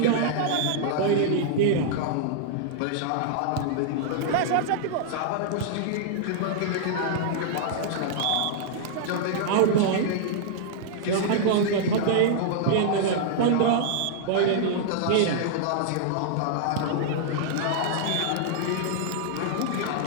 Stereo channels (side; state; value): both; different; correlation -0.01